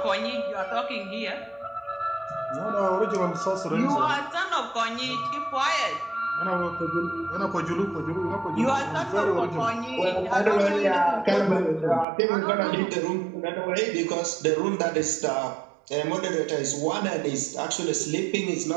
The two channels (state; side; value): drops out; left; at 12.1 s